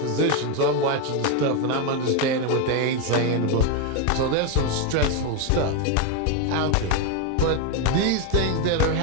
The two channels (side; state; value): both; different; correlation 0.02